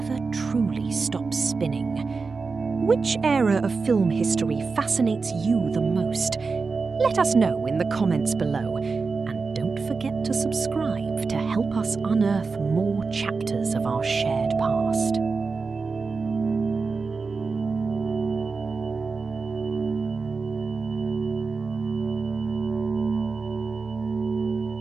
truly stops spinning. Which era of film history fascinates you the most? Let us know in the comments below, and don't forget to subscribe to help us unearth more chapters of our shared past.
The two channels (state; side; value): quieter; left; 4.5 dB